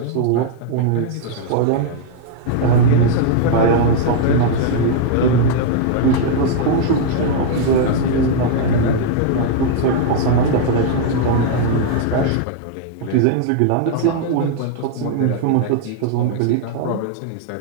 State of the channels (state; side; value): different; both; correlation 0.00